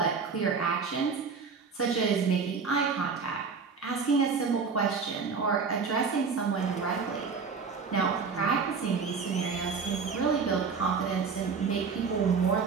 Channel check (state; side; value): quieter; left; 5.3 dB